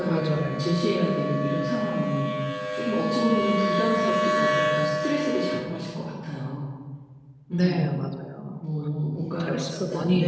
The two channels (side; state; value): both; identical; correlation 1.00